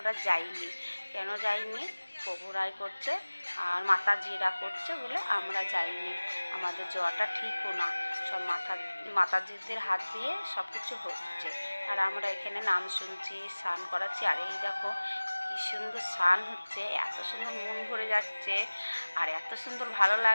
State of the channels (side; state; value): both; inverted; correlation -1.00